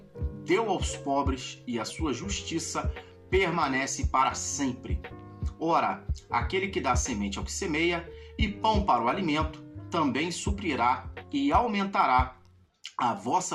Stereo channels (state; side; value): identical; both; correlation 1.00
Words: deu aos pobres, e a sua justiça permanece para sempre. Ora, aquele que dá semente ao que semeia e pão para o alimento, também suprirá e aumentará a vossa